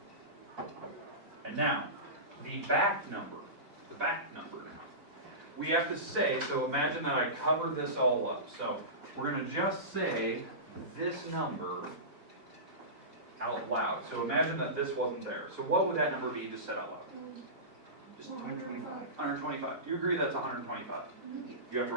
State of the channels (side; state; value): left; late; 4.0 ms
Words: And now, the back number. The back number now. We have to say, so imagine that I covered this all up. So we're going to just say this number out loud. So imagine that this wasn't there. So what would that number be just said out loud? Just 125. 125. Do you agree that's 125? You have to